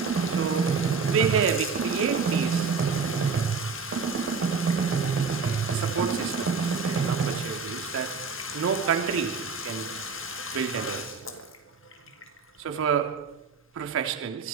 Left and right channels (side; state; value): left; quieter; 5.0 dB